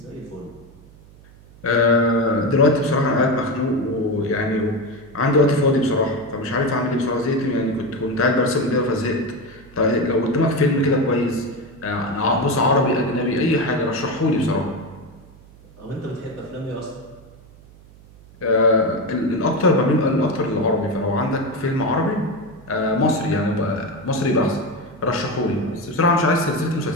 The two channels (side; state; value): right; noise; hum, 24 dB below the sound